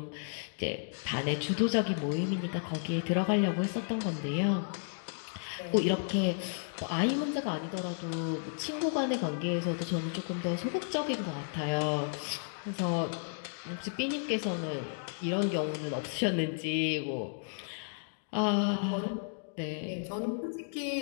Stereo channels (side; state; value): right; silent; digital silence